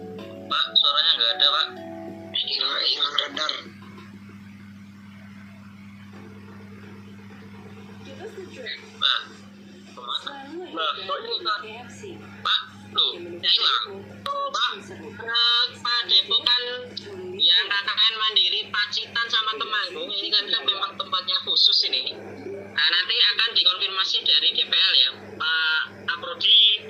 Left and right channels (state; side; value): identical; both; correlation 1.00